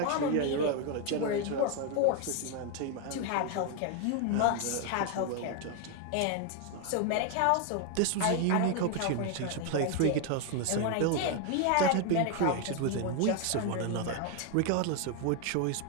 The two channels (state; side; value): different; both; correlation 0.01